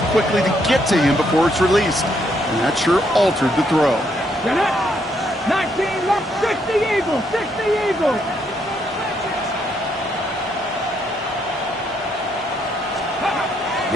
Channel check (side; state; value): both; normal; correlation 0.74